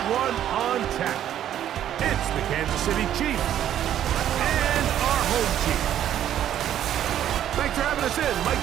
one on tap. It's the Kansas City Chiefs and our home team. Thanks for having us in. Mike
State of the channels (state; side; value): quieter; left; 10.9 dB